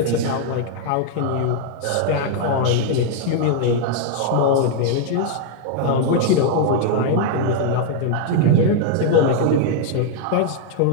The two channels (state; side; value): different; both; correlation 0.00